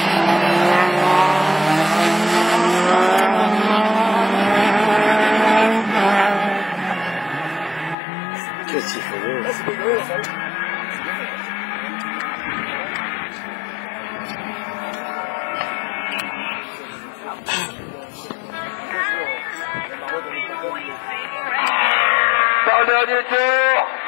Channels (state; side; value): drops out; right; at 8.0 s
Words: Qu'est-ce qu'il faut dire? C'est dégueu, ça. Dans le dernier tour.